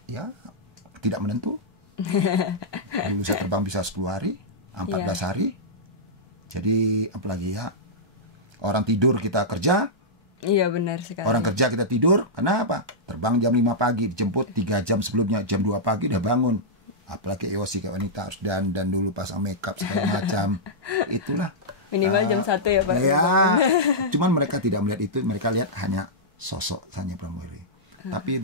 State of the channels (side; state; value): both; normal; correlation -0.11